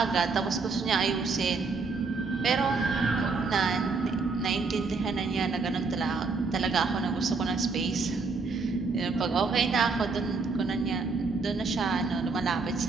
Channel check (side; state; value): left; quieter; 4.3 dB